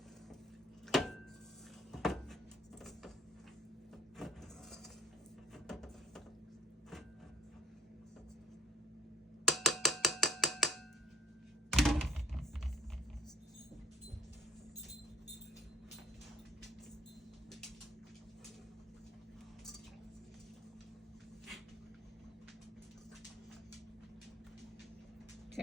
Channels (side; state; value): both; normal; correlation 0.58